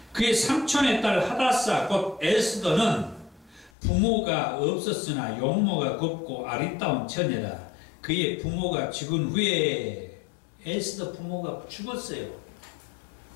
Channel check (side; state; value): right; drops out; at 3.7 s